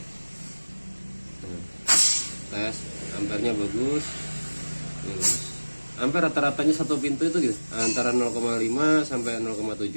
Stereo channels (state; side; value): inverted; both; correlation -1.00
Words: Tes ampernya bagus. Ampere rata-ratanya satu pintu itu gitu, antara 0,5 sampai